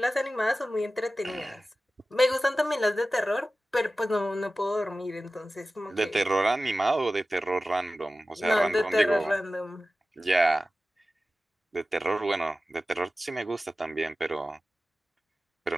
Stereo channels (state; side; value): normal; both; correlation 0.95